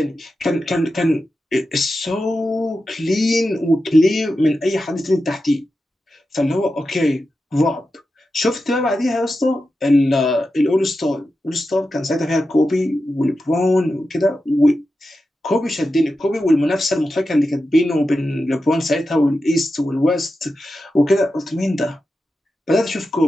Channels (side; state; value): both; normal; correlation 0.91